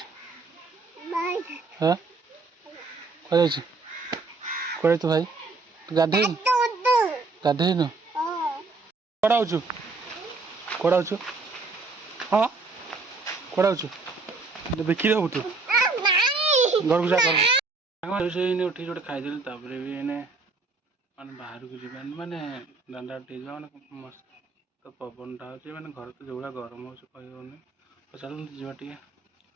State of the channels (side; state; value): left; quieter; 3.9 dB